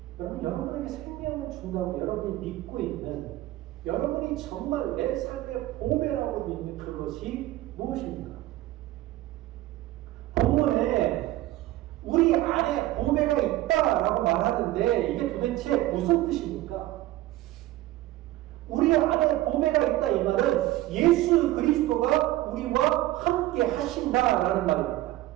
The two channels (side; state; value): left; quieter; 16.1 dB